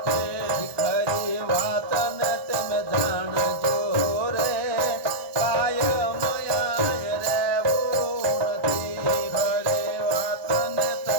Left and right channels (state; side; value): late; left; 1.0 ms